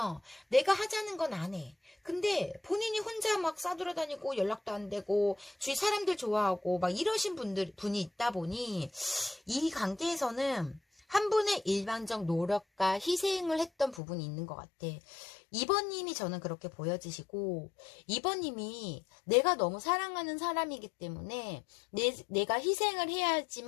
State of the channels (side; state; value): right; drops out; at 14.0 s